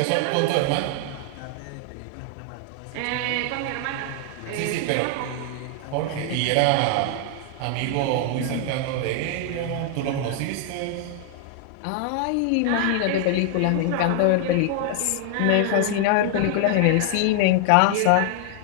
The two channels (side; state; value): both; different; correlation 0.00